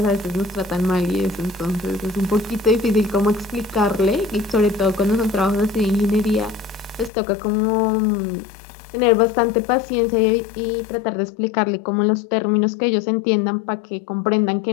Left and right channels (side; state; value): right; drops out; at 7.1 s